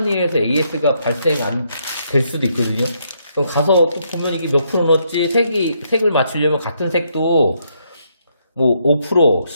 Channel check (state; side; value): inverted; both; correlation -0.75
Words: 일에서 AS가 발생 안 될 수도 있거든요. 그럼 가서 또 보면 이게 몇 프로 넣었지, 색을 맞추려면 같은 색도 뭐 5%,